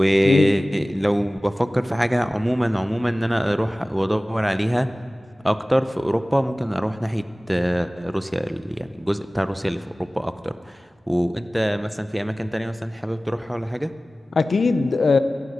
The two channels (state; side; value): normal; both; correlation 0.97